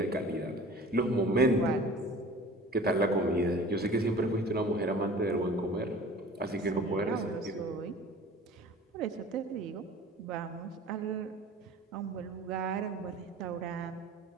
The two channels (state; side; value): normal; both; correlation 0.43